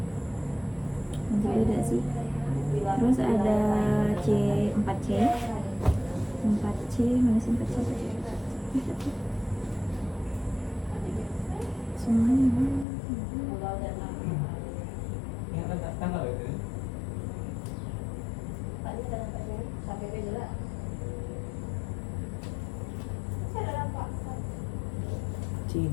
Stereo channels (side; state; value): right; drops out; at 12.9 s